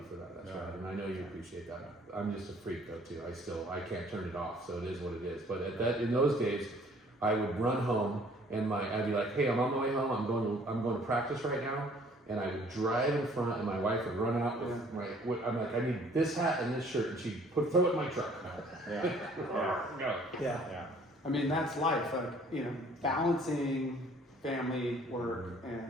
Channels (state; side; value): normal; both; correlation 0.57